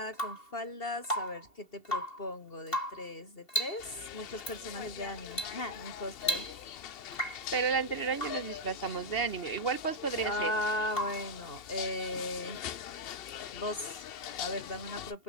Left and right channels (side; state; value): right; late; 2.7 ms